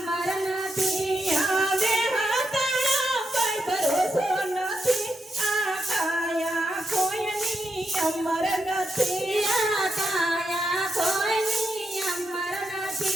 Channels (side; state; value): both; normal; correlation 0.83